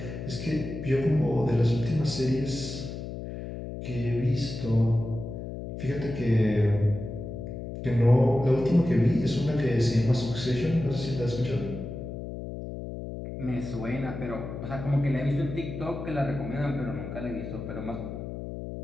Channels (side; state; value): left; noise; hum, 8 dB below the sound